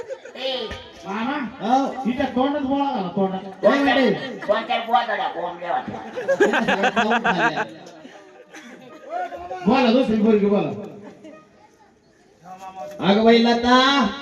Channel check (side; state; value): both; identical; correlation 1.00